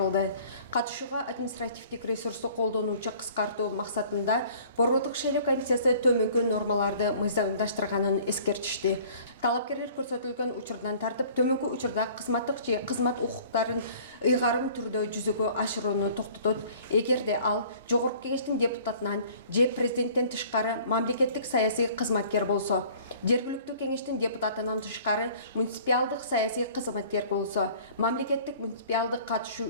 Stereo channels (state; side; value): inverted; both; correlation -0.51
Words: Катышууга административдик ресурсту колдонуучу кыскартуу максатында Борбордук шайлоо комиссиясы төмөнкү нормаларды мыйзамдаштырганын эскертишти. Талапкерлер көрсөтүлгөн учурдан тартып, төмөнкү учурда кызматтык же кызмат укуктарын ыйгарым түрдө жүзөгө ашырууну токтотот, эгерде ал жогорку кеңештин депутатынан же президенттен тышкары мамлекеттик саясий кызматкер болсо, жергиликтүү кеңештин депутатынан тышкары муниципалдык саясий кызматкер болсо, мамлекеттик муниципалдык